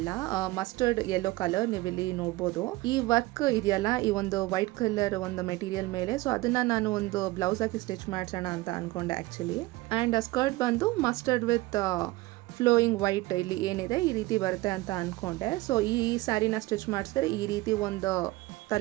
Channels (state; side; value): quieter; left; 19.9 dB